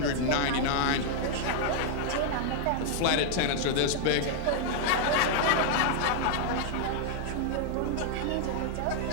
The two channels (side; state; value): both; different; correlation -0.01